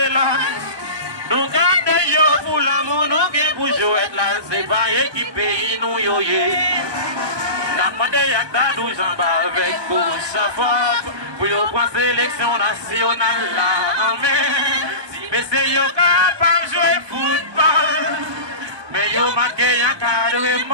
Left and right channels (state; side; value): late; left; 1.2 ms